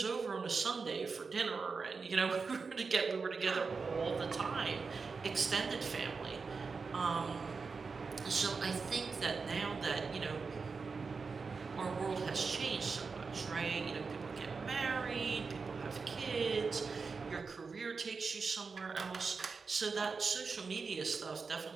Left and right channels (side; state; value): left; quieter; 4.8 dB